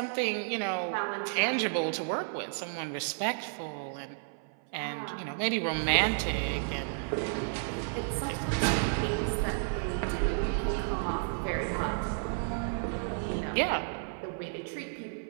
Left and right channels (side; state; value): left; silent; 56 dB below the other